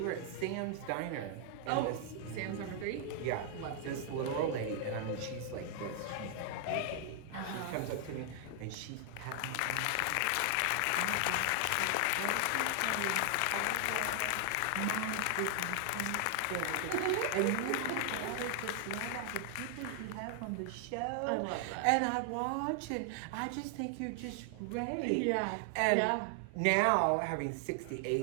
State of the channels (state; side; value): different; both; correlation 0.00